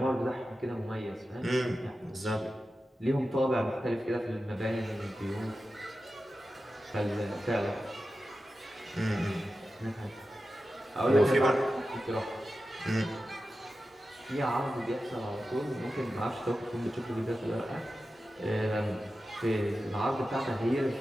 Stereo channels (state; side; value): normal; both; correlation 0.93